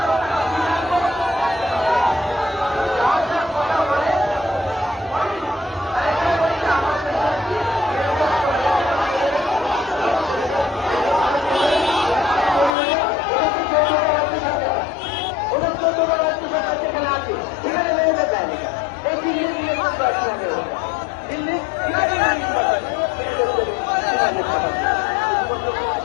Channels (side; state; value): right; drops out; at 12.8 s